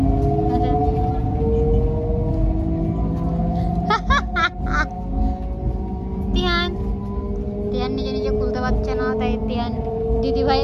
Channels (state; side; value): identical; both; correlation 1.00